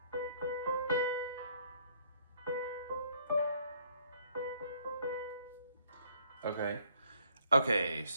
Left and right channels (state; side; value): inverted; both; correlation -0.64